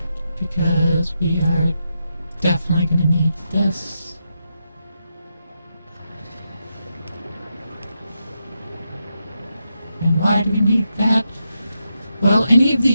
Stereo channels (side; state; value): both; inverted; correlation -0.85